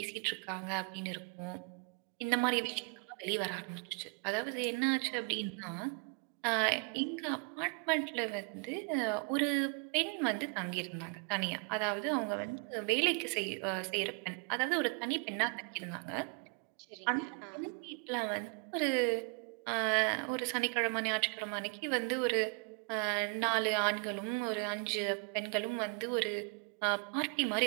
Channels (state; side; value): quieter; left; 33.0 dB